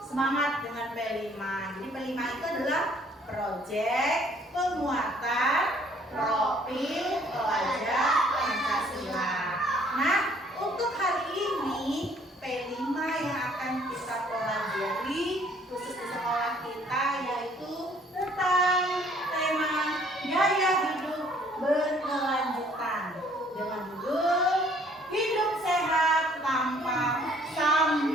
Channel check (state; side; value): normal; both; correlation 0.60